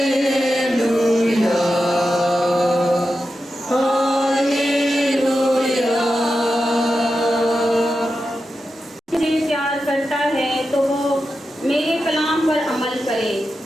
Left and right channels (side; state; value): both; normal; correlation 0.90